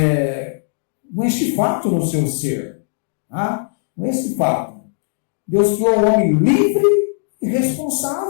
com este fato no seu ser. Com esse fato. Deus criou o homem livre e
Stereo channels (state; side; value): silent; right; digital silence